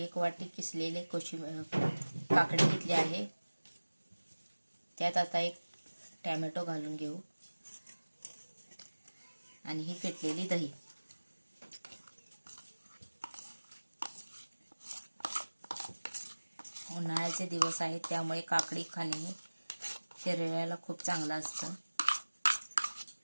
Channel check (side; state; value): both; inverted; correlation -1.00